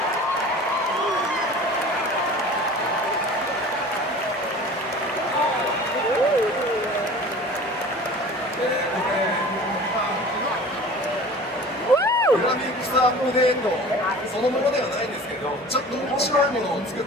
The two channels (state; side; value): normal; both; correlation 0.41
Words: Woo! グラフィックスアップデートそのものではないんですけど、ちょっと面白いものを作っ